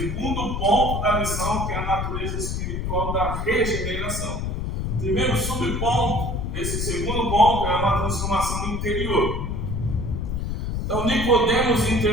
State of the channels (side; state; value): left; noise; rumble, 2 dB below the sound